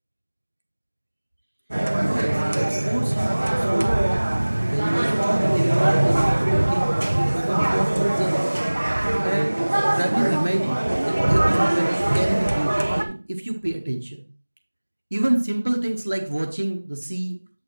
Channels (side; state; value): both; inverted; correlation -1.00